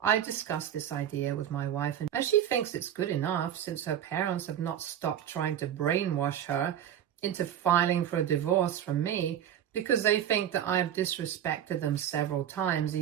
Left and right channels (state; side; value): quieter; left; 10.1 dB